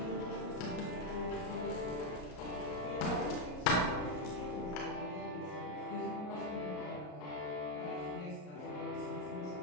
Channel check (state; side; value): late; right; 33 ms